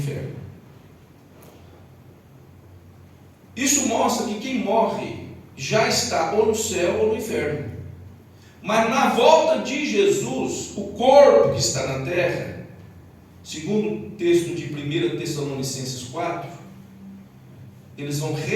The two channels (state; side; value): identical; both; correlation 1.00